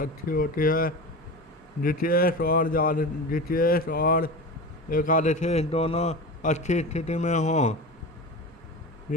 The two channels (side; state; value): both; normal; correlation 0.28